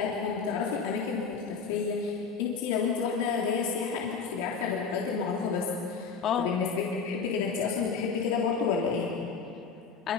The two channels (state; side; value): quieter; right; 5.4 dB